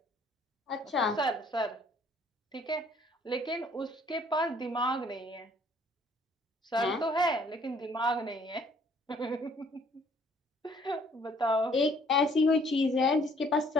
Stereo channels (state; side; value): normal; both; correlation 0.60